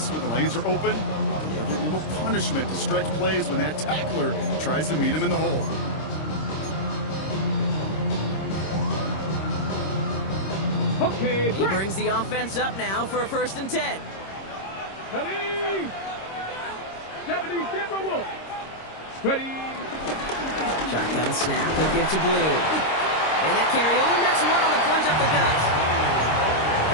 when the lanes are open, deliver a little punishment to stretch plays when that tackler tries to meet him in the hole. Okay, He brings the offense up now for a first and 10. 70 Timberwolf. Ready. Shotgun snap, he'll give to Blue. And that carry only nets one on the plunge up the gut.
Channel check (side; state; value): right; late; 26 ms